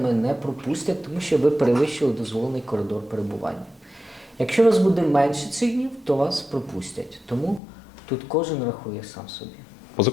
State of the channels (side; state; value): right; drops out; at 7.6 s